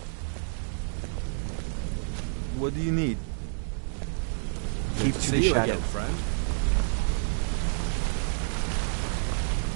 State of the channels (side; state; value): left; silent; digital silence